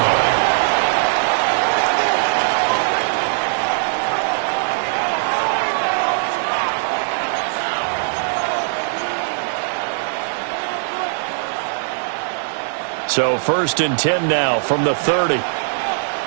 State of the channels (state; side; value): silent; left; 56 dB below the other